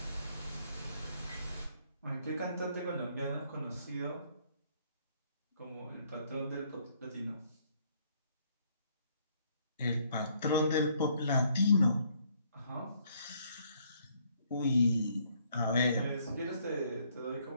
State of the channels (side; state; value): both; inverted; correlation -0.67